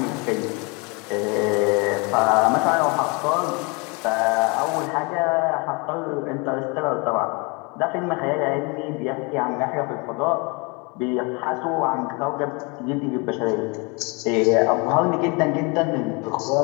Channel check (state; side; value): quieter; right; 30.0 dB